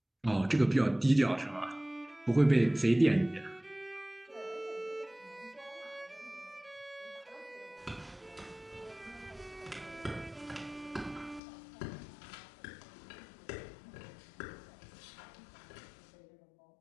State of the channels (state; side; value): drops out; right; at 11.4 s